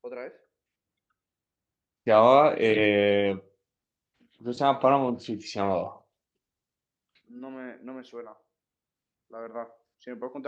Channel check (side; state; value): both; identical; correlation 1.00